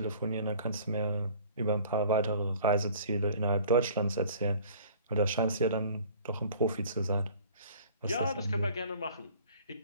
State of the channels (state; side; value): inverted; both; correlation -0.50